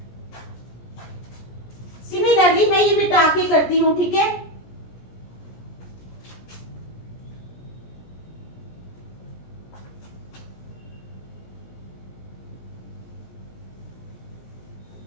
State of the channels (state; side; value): late; right; 17 ms